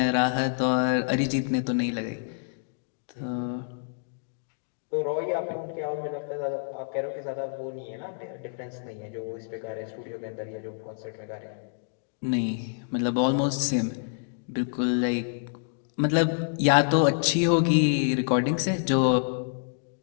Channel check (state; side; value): silent; right; digital silence